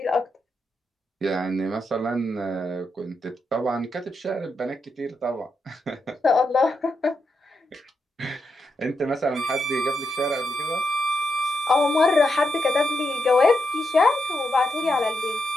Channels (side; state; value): both; normal; correlation 0.84